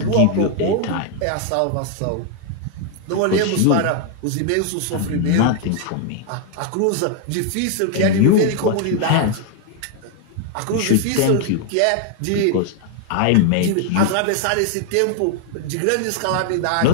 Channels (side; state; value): both; different; correlation 0.00